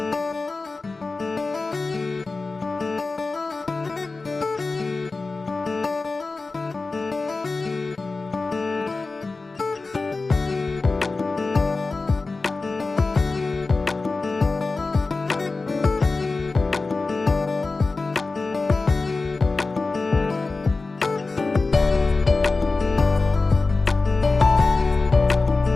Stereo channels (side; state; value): right; quieter; 3.7 dB